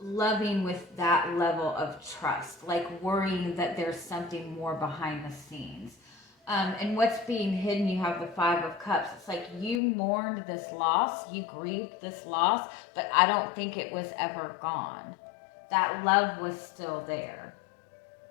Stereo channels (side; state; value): right; drops out; at 9.8 s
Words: loving with that level of trust, like worrying that there's something more behind the scenes. And what's being hidden, you have the Five of Cups. It's like you mourned this loss, you grieved this loss, but I don't think it was ever gone. That love was still there.